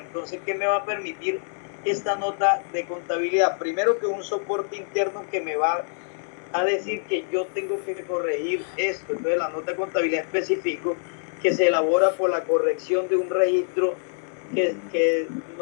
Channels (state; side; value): silent; right; 62 dB below the other